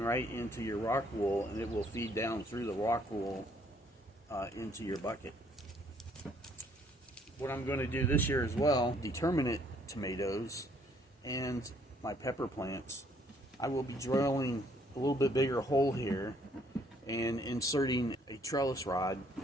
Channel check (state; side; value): normal; both; correlation 0.65